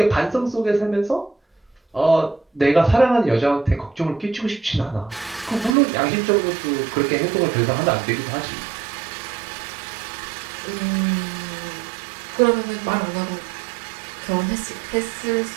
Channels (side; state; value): left; drops out; at 5.8 s